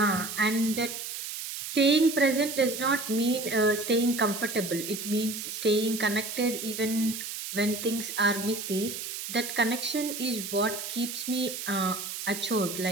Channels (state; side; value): noise; right; hiss, 7 dB below the sound